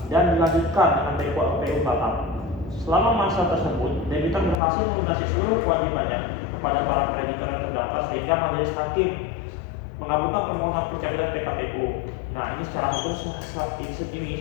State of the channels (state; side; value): drops out; right; at 4.6 s